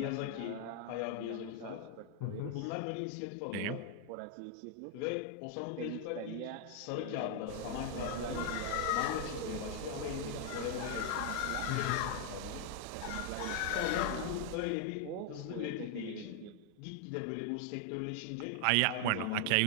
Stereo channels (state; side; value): different; both; correlation 0.00